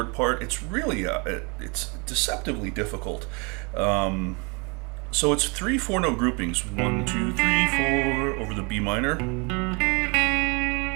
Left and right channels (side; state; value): left; quieter; 31.7 dB